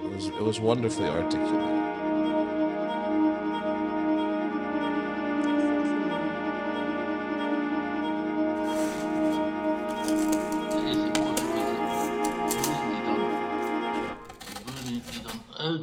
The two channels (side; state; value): both; identical; correlation 1.00